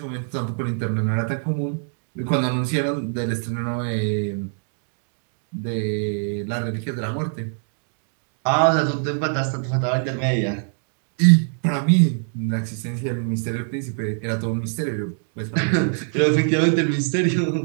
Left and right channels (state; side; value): silent; left; 63 dB below the other